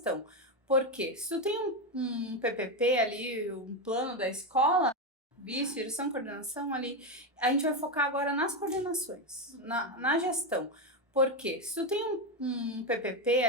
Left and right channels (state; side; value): normal; both; correlation 0.10